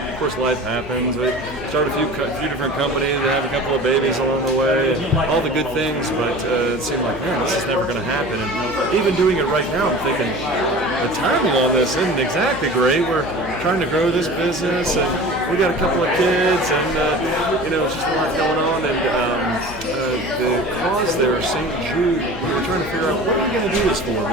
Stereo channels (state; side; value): noise; left; hum, 15 dB below the sound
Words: of course, life happens. start a few different companies, have a couple of babies along the way, and all the good things, but it seemed like, man, this is never going to happen. And even doing it right now, I'm thinking, the timing on this isn't exactly great. We're trying to grow this business, and we got a couple of kids, and it's just a lot going on. And the cause there, St. Jude, we were trying to figure out what are we going to do this for,